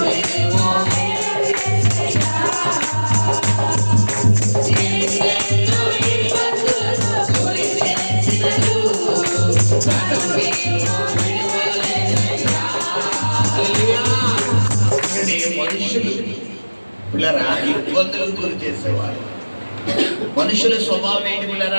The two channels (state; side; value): inverted; both; correlation -1.00